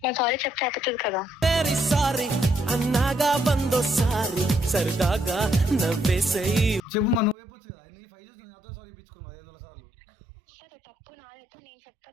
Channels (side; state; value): left; drops out; at 7.4 s